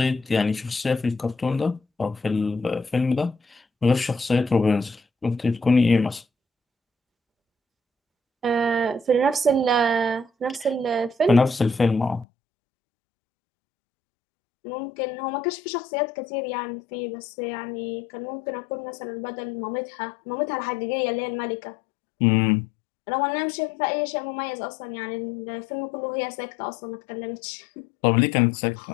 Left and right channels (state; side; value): drops out; right; at 12.2 s